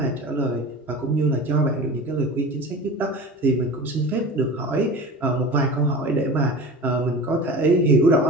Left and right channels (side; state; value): both; normal; correlation 0.35